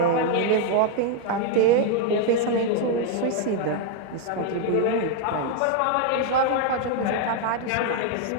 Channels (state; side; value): different; both; correlation 0.00